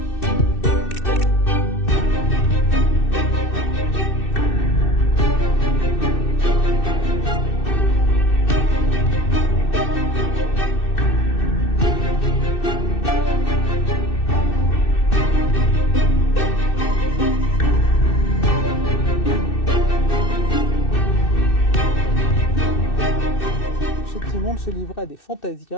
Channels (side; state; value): right; late; 2.6 ms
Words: Simon se livrait à des